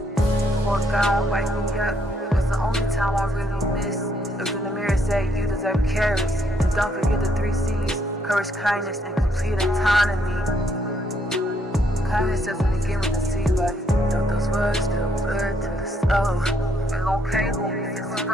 Before God wake me up, it was the only time I really missed. Looked in the mirror, say you deserve carrots. And don't forget the 3 C's, courage, kindness, and complete autonomy. Kindness doesn't begin with a C, but don't those words feel good to the soul. And okay, if it's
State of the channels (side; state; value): both; normal; correlation 0.72